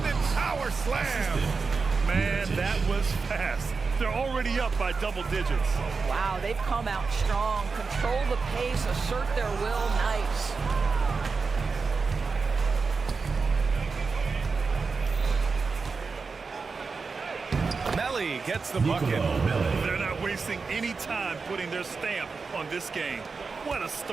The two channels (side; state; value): left; quieter; 4.6 dB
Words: power slam. Man, that was fast. They're already up by double digits. Wow, they've come out strong. Control the pace, assert their will. Nice. Melly gets the bucket. They're not wasting any time putting their stamp on this game. What a